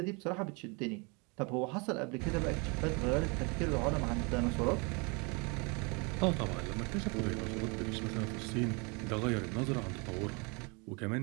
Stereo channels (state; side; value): quieter; left; 30.8 dB